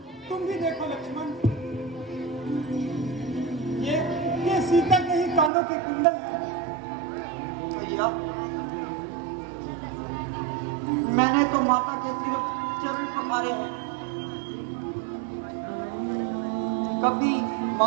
भैया, मैंने तो माता के सिर्फ चरण पखारे हैं, कभी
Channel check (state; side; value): drops out; left; at 5.5 s